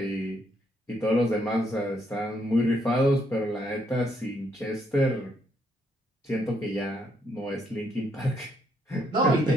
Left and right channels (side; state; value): both; normal; correlation 0.73